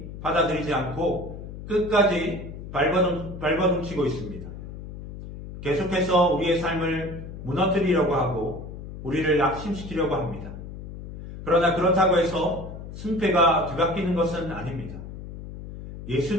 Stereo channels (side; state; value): left; noise; hum, 11 dB below the sound